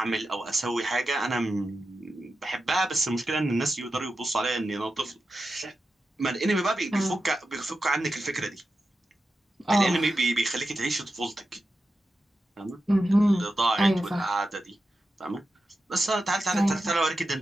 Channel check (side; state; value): both; normal; correlation 0.91